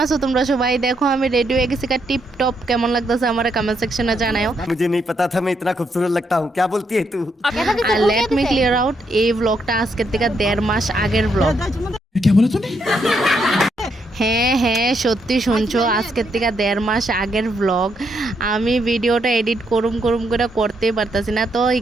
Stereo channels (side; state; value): both; normal; correlation 0.77